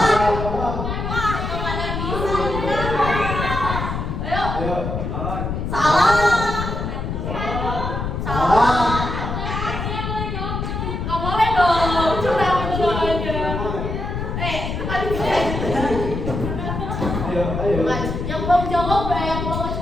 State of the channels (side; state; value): left; noise; rumble, 4 dB below the sound